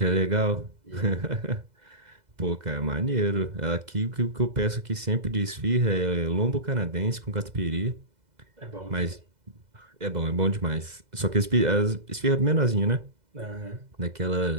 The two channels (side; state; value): left; late; 2.0 ms